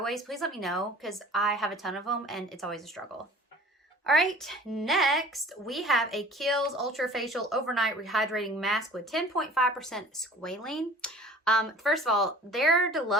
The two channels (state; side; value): normal; both; correlation 0.46